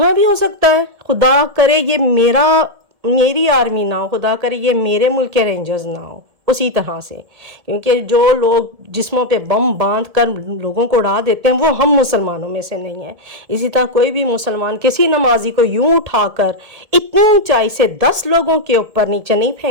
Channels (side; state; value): left; late; 1.7 ms